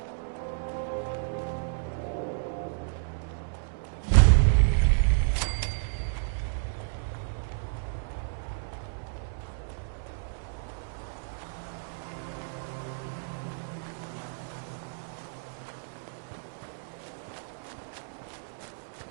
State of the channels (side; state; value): left; silent; digital silence